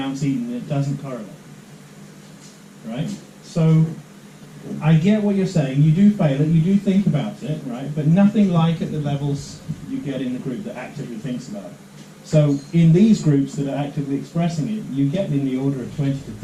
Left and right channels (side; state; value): both; identical; correlation 1.00